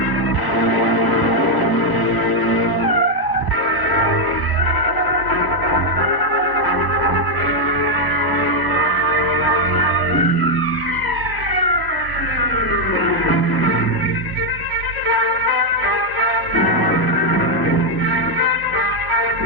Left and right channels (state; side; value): late; right; 1.0 ms